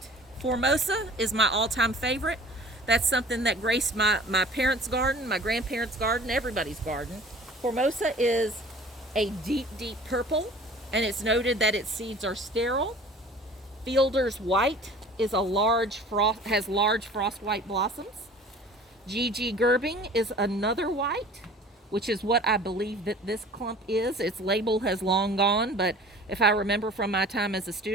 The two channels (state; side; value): normal; both; correlation 0.46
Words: Formosa is my all-time favorite. That's something that graced my parents' garden, my grandparents' garden, everybody's garden. Formosa is a deep, deep purple, and it's noted that its seeds are sterile. Fielder's white is has large frost white blossoms. GG Gerbing is another white, which is what I believe that this clump is. Its label has long gone, but if I remember from my time as a